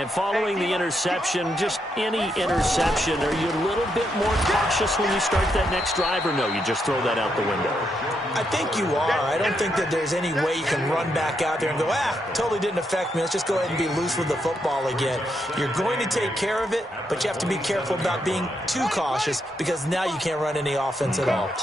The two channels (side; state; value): both; normal; correlation 0.80